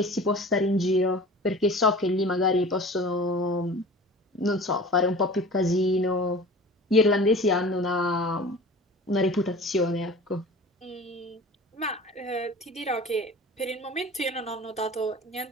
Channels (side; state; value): both; normal; correlation 0.40